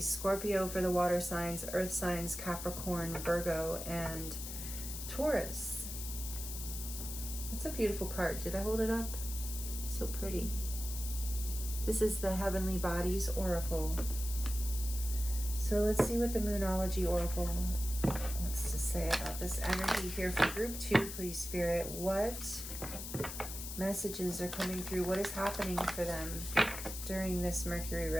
Scorpio for the water signs, earth signs, Capricorn, Virgo, and Taurus. That's a beautiful card. Did I hold it up? So pretty. This is the Heavenly Bodies Oracle. So let's see what the Moonology Oracle wants to say about this energy here for group 2, please, Spirit. What messages are coming through? What is happening for them during this Mercury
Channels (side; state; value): left; noise; hiss, 8 dB below the sound